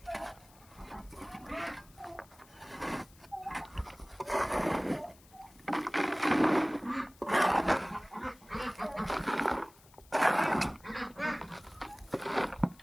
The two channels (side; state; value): left; noise; hiss, 26 dB below the sound